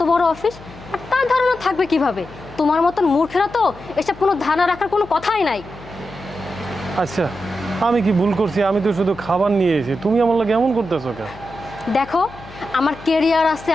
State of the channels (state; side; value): noise; left; hum, 19 dB below the sound